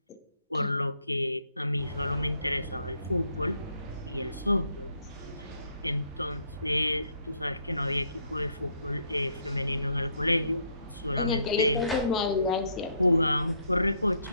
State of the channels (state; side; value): inverted; both; correlation -0.70